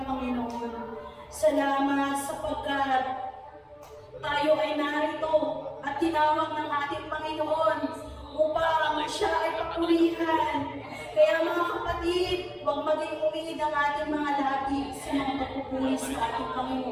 Panginoon. Salamat sapagkat tayo ay narito at tinawag ng ating Panginoon upang siya ay papurihan. Kaya mga kapatid, huwag maging umid ang ating mga labi sa mga pagpupuri sa ating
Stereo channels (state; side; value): identical; both; correlation 1.00